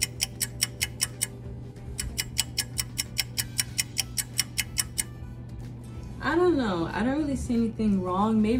I don't know, I don't really see anything wrong.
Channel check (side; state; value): both; identical; correlation 1.00